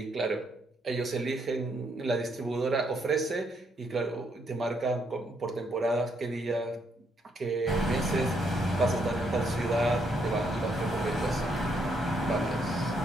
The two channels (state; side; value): normal; both; correlation 0.74